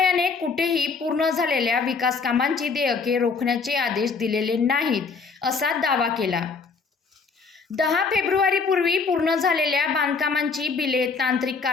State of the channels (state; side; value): quieter; right; 4.9 dB